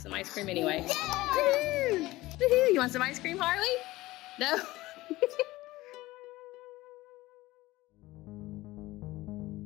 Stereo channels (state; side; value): quieter; right; 18.5 dB